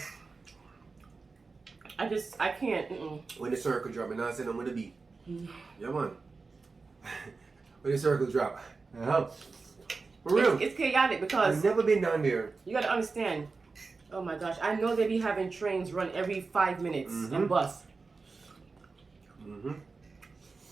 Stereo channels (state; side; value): quieter; left; 4.2 dB